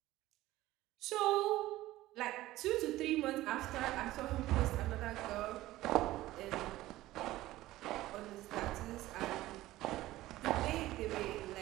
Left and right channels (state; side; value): quieter; left; 16.4 dB